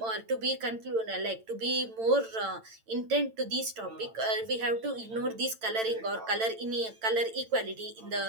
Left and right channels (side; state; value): left; late; 8.9 ms